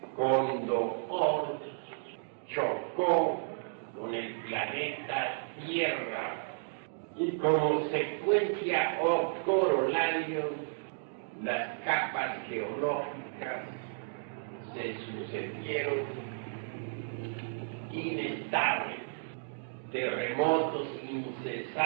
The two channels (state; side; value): silent; left; digital silence